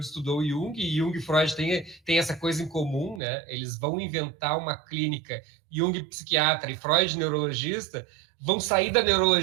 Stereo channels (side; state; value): left; drops out; at 3.2 s